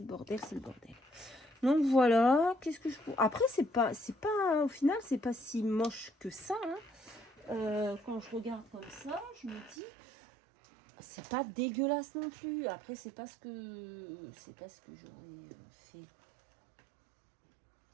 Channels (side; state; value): left; drops out; at 9.8 s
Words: bordel, c'est le bordel. Donc voilà, qu'est-ce que je... Après, c'est pas, au final, c'est pas si moche que ça. Hein. Quand je regarde comme ça, je me dis, c'est pas dégueulasse non plus. Après, c'est pas ce que j'aurais fait. C'est